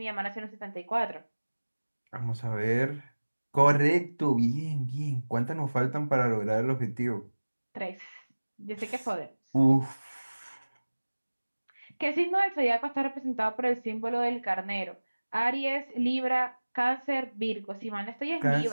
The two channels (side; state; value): both; inverted; correlation -1.00